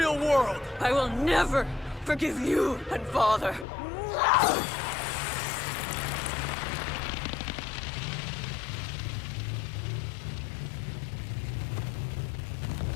world! I will never forgive you and Father.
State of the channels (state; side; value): drops out; right; at 3.7 s